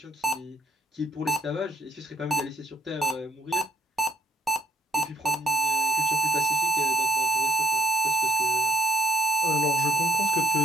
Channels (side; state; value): both; normal; correlation 0.67